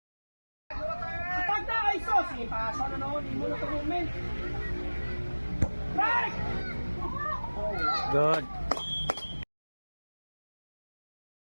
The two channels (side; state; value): both; inverted; correlation -1.00